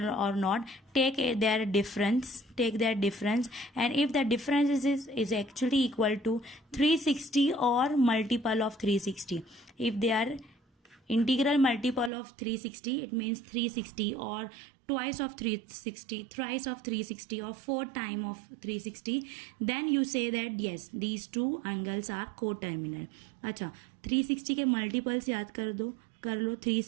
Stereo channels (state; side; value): drops out; left; at 12.1 s